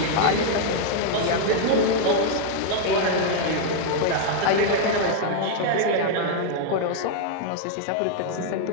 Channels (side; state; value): both; different; correlation 0.00